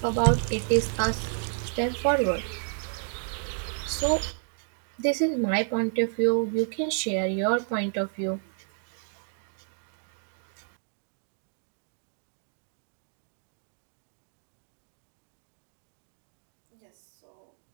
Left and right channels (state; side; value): silent; left; 57 dB below the other